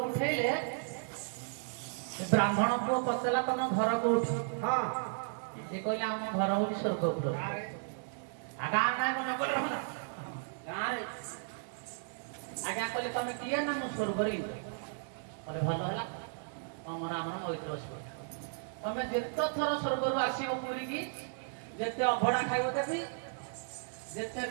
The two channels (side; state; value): left; silent; digital silence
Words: ଉଠେଇଲେ ବ୍ରାହ୍ମଣ ପୁଅ ପଚାରିଲା ତମ ଘର କୋଉଠି? ସେ କହିଲେ ଆମ ଘର ହଉଛି ସ୍ୱର୍ଗପୁର। ଗାଁ ନାଁ କଣ ନଗର ହେଲା ଗାଁରେ? ଆଜ୍ଞା କହିଲେ ତମେ କିଏ? ନା ମୁଁ ସ୍ୱର୍ଗରେ ଇନ୍ଦ୍ର। କହିଲେ ଭଲ ହେଲା, ତମର ଆମର ମୈତ୍ର ସ୍ୱର୍ଗ। ତମେ ଯେତେ ଥର ସ୍ୱର୍ଗରୁ ଆସିବ ପୁରୀକି, ଯେତେ ଅଭଡ଼ା ଖାଇବ ଦେବି, ଯେତେ